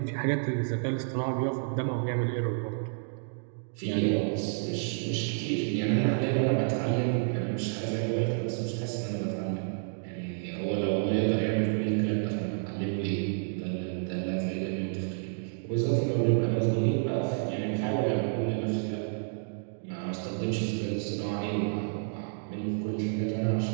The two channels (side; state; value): left; silent; digital silence